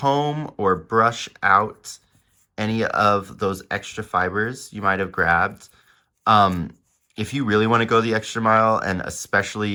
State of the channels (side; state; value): both; identical; correlation 1.00